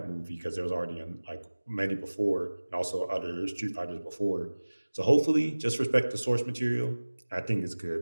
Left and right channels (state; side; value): inverted; both; correlation -1.00